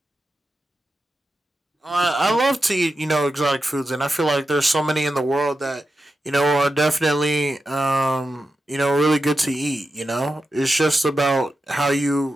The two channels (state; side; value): normal; both; correlation 0.90